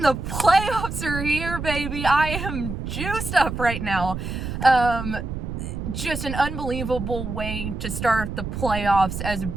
The playoffs are here, baby. I am juiced up right now. Just an unbelievable way to start the playoffs as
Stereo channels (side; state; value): right; noise; rumble, 5 dB below the sound